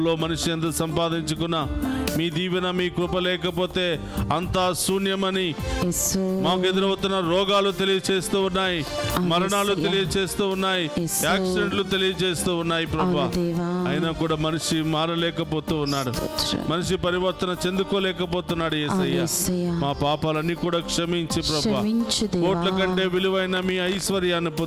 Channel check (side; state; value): both; identical; correlation 1.00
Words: మనిషి ఎంత సంపాదించుకున్నా మీ దీవెన మీ కృప లేకపోతే అంతా శూన్యమని యేసు. మాకు ఎదురవుతున్న రోగాలు తెలియచేస్తూ ఉన్నాయి, మరణాలు తెలియచేస్తూ ఉన్నాయి, యాక్సిడెంట్లు తెలియచేస్తూ ఉన్నాయి ప్రభువా. అయినా కూడా మనిషి మారలేకపోతూ ఉన్నాడు, మనిషి పరివర్తన చెందుకోలేకపోతున్నాడు యేసయ్యా. మా పాపాలన్నీ కూడా క్షమించి ప్రభువా, కోట్ల కంటే విలువైన మీ ఐశ్వర్యాన్ని